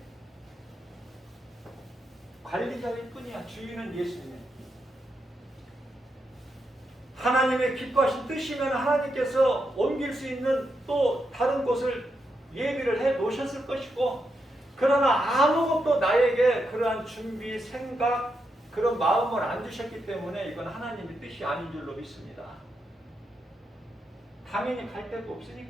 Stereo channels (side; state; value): both; normal; correlation 0.84